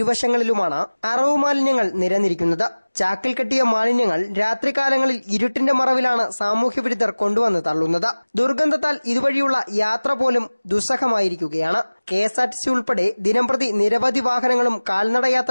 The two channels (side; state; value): both; inverted; correlation -1.00